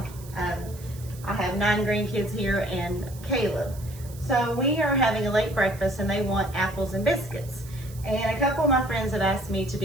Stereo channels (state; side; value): noise; right; hiss, 19 dB below the sound